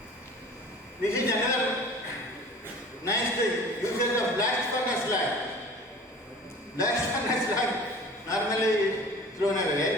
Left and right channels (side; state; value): both; normal; correlation 0.43